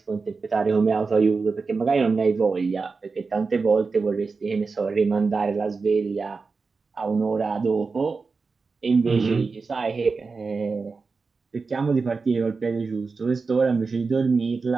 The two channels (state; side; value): quieter; left; 4.5 dB